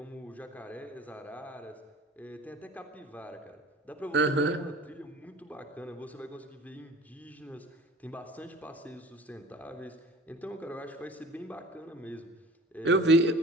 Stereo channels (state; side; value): normal; both; correlation 0.44